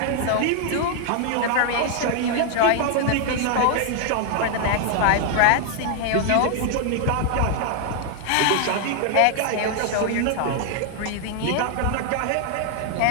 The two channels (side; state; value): both; different; correlation 0.00